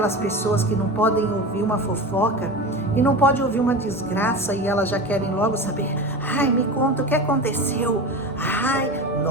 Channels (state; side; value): normal; both; correlation 0.27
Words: pessoas que não podem ouvir uma fofoca e não podem ouvir uma desgraça e elas já querem logo saber: ai, me conta o que aconteceu. Ai,